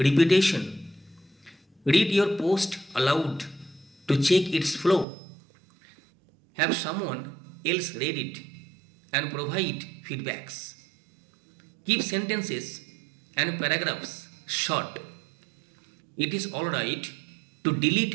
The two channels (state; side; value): drops out; left; at 5.1 s